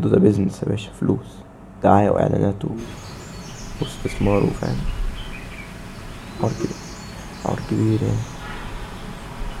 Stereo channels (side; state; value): both; identical; correlation 1.00